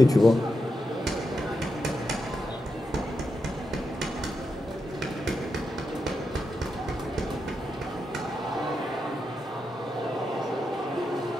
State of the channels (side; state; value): both; normal; correlation 0.86